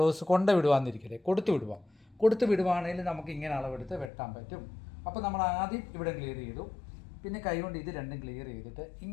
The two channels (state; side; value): drops out; right; at 4.1 s